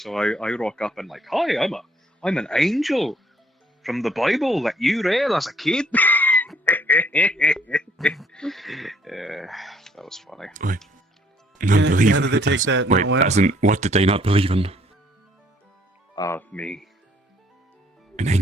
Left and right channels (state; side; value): normal; both; correlation 0.63